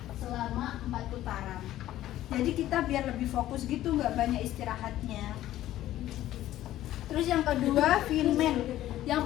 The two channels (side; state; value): right; quieter; 13.8 dB